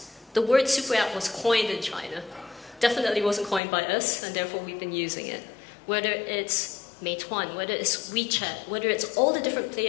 The word SuperApp was coined in China. Definitely wasn't coined by us, and therefore we've been using it. Whether it's Meituan, whether it's WeChat, whether it's all the different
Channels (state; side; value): drops out; right; at 3.6 s